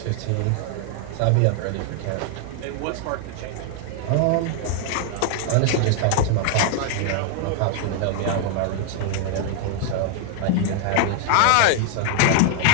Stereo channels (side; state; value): both; different; correlation 0.00